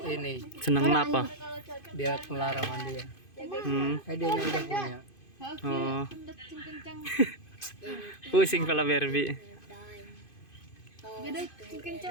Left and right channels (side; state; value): right; late; 2.5 ms